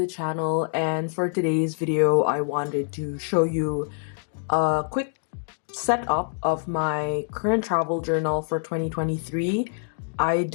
channel, and for today's video I wanted to show you a quick setup of my current travel journal for 2023. I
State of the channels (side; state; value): right; silent; digital silence